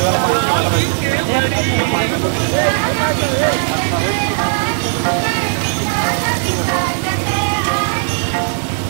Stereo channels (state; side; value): silent; left; 69 dB below the other